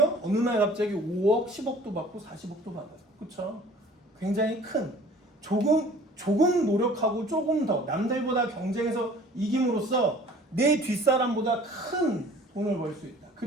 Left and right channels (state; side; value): normal; both; correlation 0.49